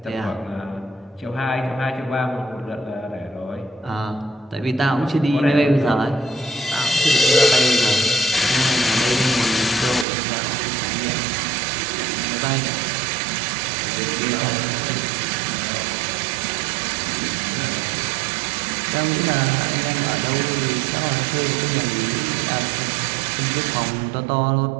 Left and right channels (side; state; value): left; drops out; at 10.1 s